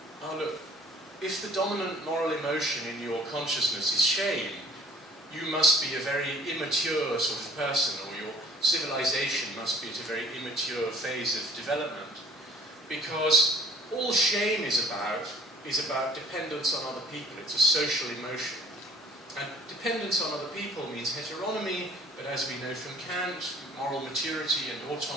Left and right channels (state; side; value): normal; both; correlation 0.51